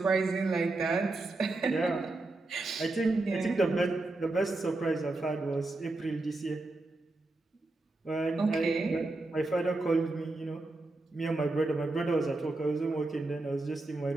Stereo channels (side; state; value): left; quieter; 3.0 dB